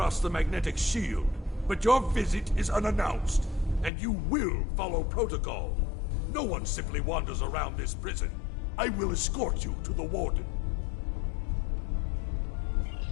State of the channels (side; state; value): right; drops out; at 3.9 s